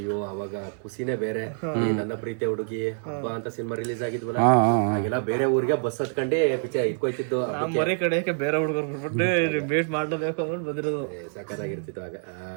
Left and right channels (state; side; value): silent; left; 61 dB below the other